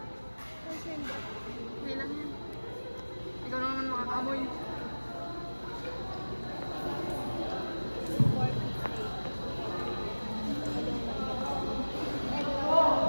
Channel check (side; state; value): both; inverted; correlation -1.00